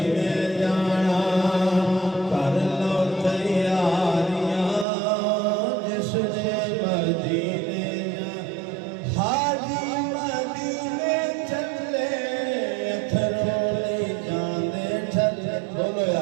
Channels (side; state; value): left; drops out; at 4.9 s